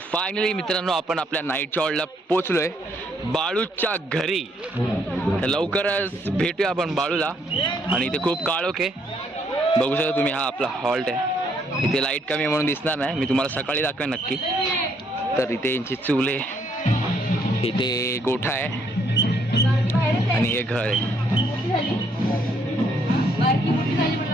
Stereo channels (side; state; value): both; normal; correlation 0.70